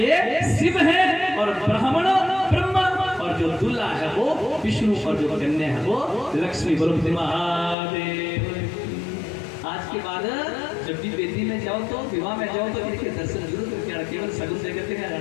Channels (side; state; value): right; drops out; at 7.8 s